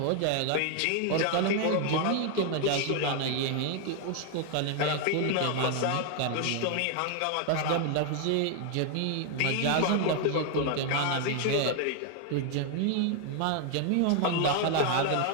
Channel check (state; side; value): different; both; correlation 0.00